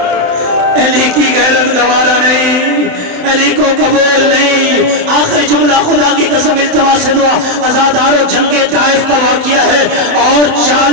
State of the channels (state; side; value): late; left; 27 ms